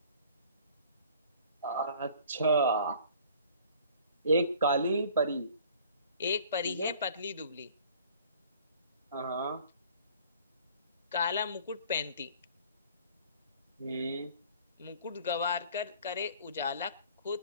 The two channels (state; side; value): inverted; both; correlation -0.51